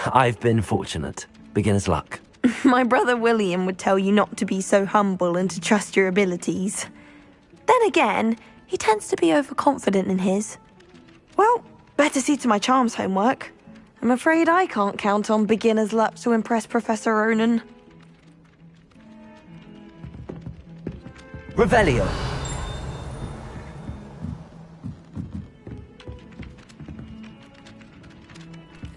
I've been fortunate. Beginner's luck. My brother William would tell you not to be so humble and to trust your abilities. Then again, he tends to be overconfident in his. Well, better see to my charms homework. I'm afraid I can't count on beginner's luck to impress Professor Ronan. Revelio.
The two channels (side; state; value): both; identical; correlation 1.00